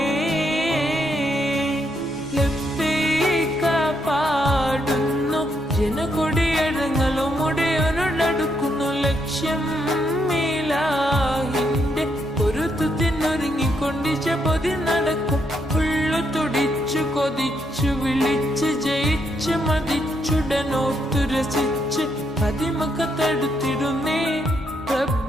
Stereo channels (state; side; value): normal; both; correlation 0.77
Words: ലബ്ബൈക പാടുന്നു ജനകൊടിയടങ്ങളും ഉടയോനോടടുക്കുന്നു ലക്ഷ്യം ഇലാഹിന്റെ പൊരുത്തത്തിനൊരുങ്ങിക്കൊണ്ടിച്ച പൊതി നടക്കും ഉള്ളു തുടിച്ചു കൊതിച്ചു വിളിച്ച് ജയിച്ച് മതിച്ചുടനോത്തു രസിച്ച് പതിമക്കത്തടുത്തി